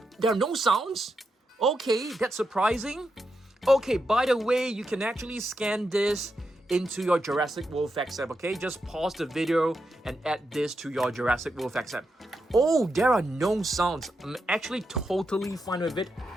there are no sounds? Okay, that's surprising. Okay, by the way, you can actually scan this into your Jurassic World Facts app, okay? Just pause the video and add this to your Jurassic World Facts app. Oh, there are no sounds. I'm actually totally fine with it,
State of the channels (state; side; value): normal; both; correlation 0.85